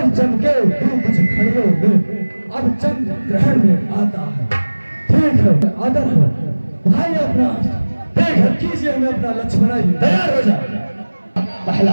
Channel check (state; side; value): inverted; both; correlation -1.00